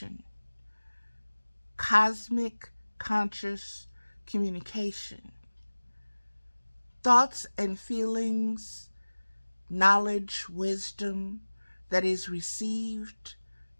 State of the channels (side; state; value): both; inverted; correlation -1.00